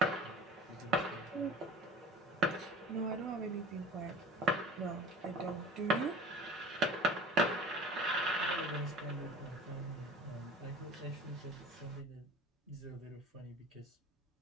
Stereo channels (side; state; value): both; normal; correlation 0.41